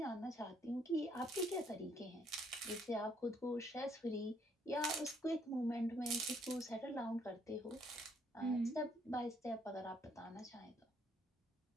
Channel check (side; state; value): both; normal; correlation 0.68